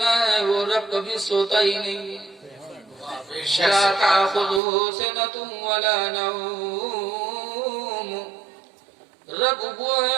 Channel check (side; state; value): left; drops out; at 4.6 s